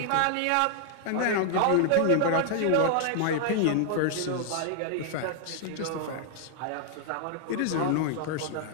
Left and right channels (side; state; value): both; different; correlation 0.00